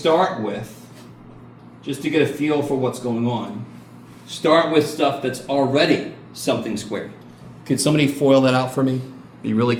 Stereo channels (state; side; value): identical; both; correlation 1.00